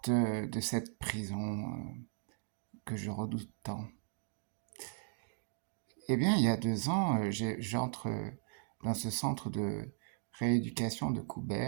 de cette prison que je redoute tant? Eh bien, il y a 2 ans, j'entre dans ce centre de rééducation de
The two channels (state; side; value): silent; left; digital silence